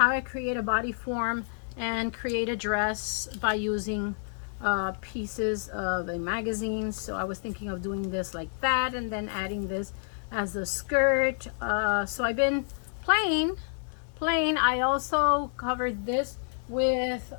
I create a body form and create a dress by using pieces of a magazine. So I was thinking of doing this like that, and then adding this as a skirt. So I've been playing. I also covered this with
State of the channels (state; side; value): silent; right; digital silence